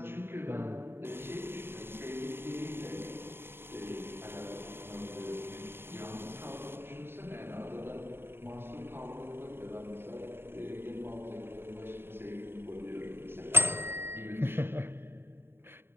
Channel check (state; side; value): late; left; 0.11 ms